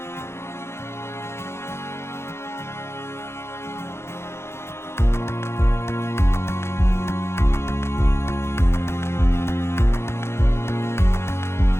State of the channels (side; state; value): right; late; 0.12 ms